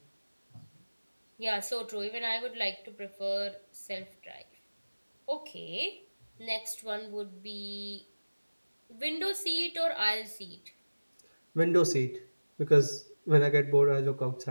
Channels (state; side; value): inverted; both; correlation -1.00